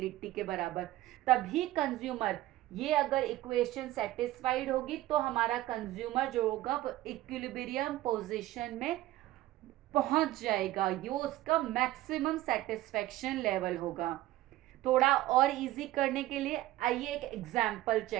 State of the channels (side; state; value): left; quieter; 15.8 dB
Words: के बराबर। तभी कंज्यूमर, ये अगर इक्वेशन सेटिस्फाइड होगी तो हमारा कंज्यूमर जो होगा वो इक्विलिब्रियम पोजीशन में पहुंच जाएगा, ये उसका मैक्सिमम सेटिस्फेक्शन लेवल होगा। थोड़ा और इजी करने के लिए आइए एक एग्जाम्पल